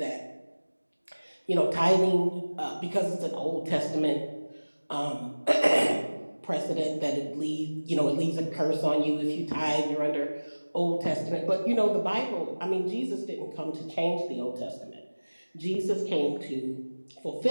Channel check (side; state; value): both; inverted; correlation -1.00